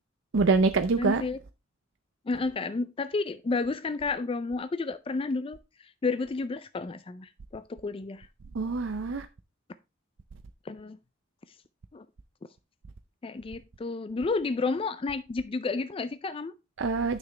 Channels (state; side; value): normal; both; correlation 0.37